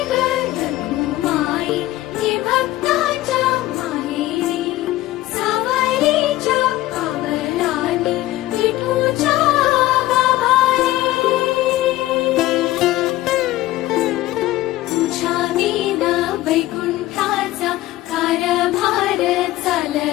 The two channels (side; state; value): right; quieter; 16.5 dB